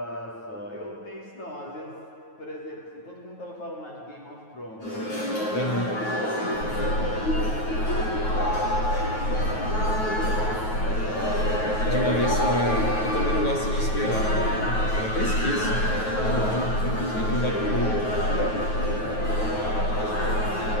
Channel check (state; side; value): late; right; 9.3 ms